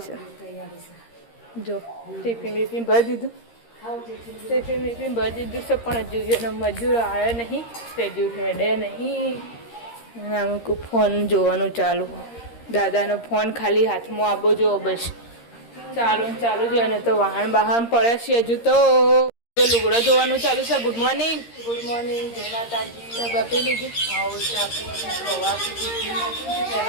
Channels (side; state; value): right; late; 13 ms